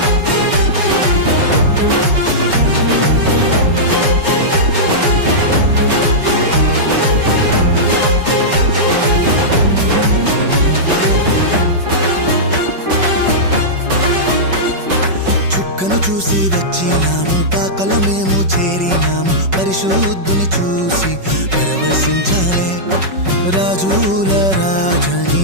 చుక్కను చూసి వచ్చినాము, పాకలో మేము చేరినాము. పరిశుద్ధుని చూసి పరవశించాలే. రాజుల రాజని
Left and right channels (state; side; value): late; left; 5.3 ms